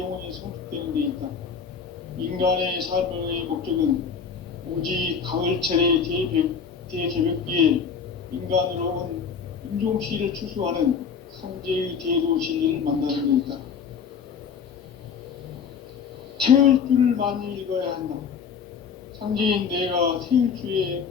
성숙되는 데 있다. 인간의 삶의 목적은 오직 가을철의 대개벽기에 인간으로 온 인종씨를 추수하는 상제의 대도 진리를 만나는 데 있다. 태울 줄을 많이 읽어야 한다. 상제인 내가 태일주의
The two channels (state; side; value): quieter; right; 6.5 dB